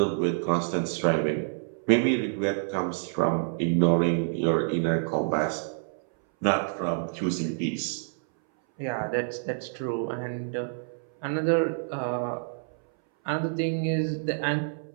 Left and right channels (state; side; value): silent; left; 59 dB below the other